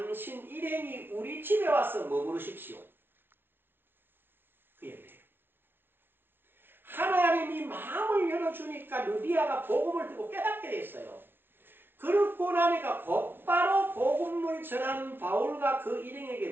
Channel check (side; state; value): left; late; 0.11 ms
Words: 일행이 우리 집에 와서 머무르십시오. 그 얘기예요. 하나님이 마음을 열어주니까 누디아가 복음을 듣고 깨닫게 됐어요. 그렇고 나니까 곧바로 복음을 전하는 바울과 그 일행에게